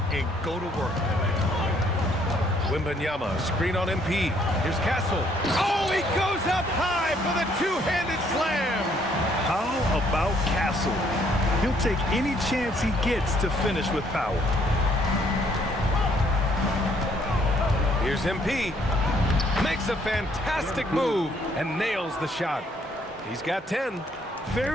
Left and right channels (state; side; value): normal; both; correlation 0.66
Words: and go to work. Wembanyama, screen on MP. Here's Castle. Oh, he goes up high for the two-handed slam. How about Castle? He'll take any chance he gets to finish with power. Here's MP. Makes a fantastic move and nails the shot. He's got 10.